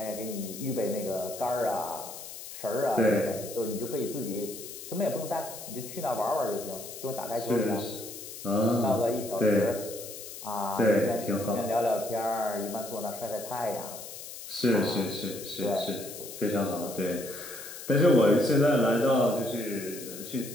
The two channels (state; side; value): noise; left; hiss, 12 dB below the sound